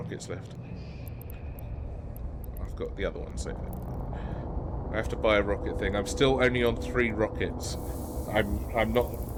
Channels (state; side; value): identical; both; correlation 1.00